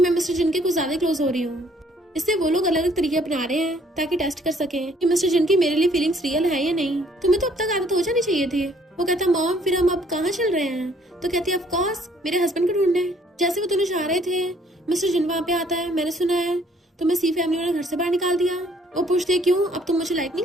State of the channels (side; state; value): both; normal; correlation 0.62